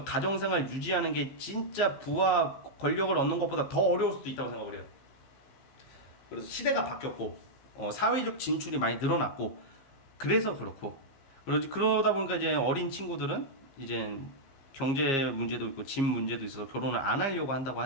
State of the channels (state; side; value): late; right; 15 ms